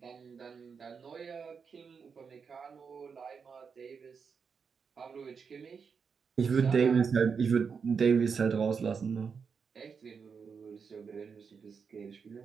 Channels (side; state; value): left; quieter; 5.9 dB